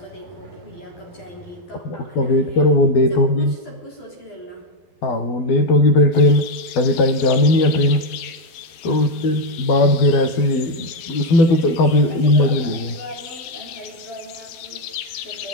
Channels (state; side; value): late; right; 12 ms